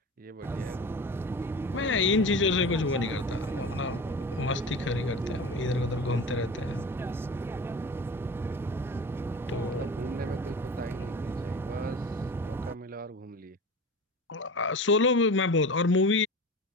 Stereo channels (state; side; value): normal; both; correlation 0.33